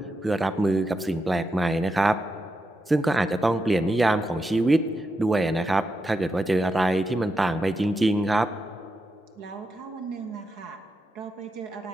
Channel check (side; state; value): both; normal; correlation 0.86